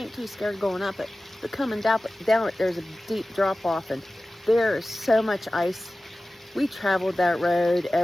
ain't too scared going up it, but coming down it, there's a deep drop off and there is so much ice. We traveled that road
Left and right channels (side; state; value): both; normal; correlation 0.96